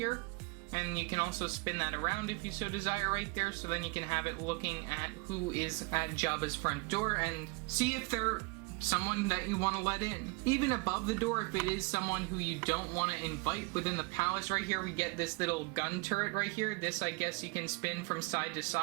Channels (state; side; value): quieter; left; 27.4 dB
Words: And you can also spin that around if you so desire right there, so then you can have it looking at who is at Jabba's front door and see if they're someone that you want to let in. Even above the door, if it is someone who you don't want to invite within the palace right here, we get this little gun turret right here. This, I guess, you can spin from side to